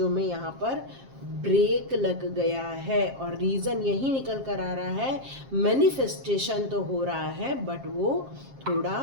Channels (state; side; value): late; left; 7.5 ms